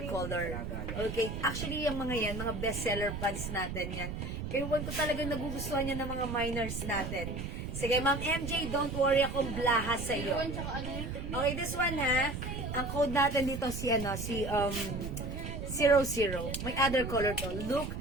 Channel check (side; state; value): right; noise; rumble, 5 dB below the sound